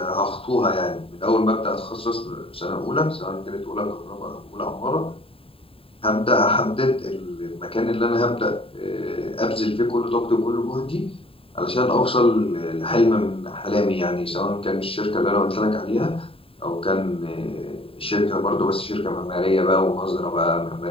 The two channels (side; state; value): right; late; 0.27 ms